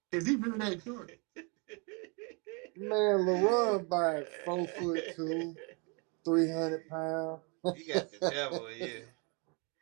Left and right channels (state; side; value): quieter; left; 32.7 dB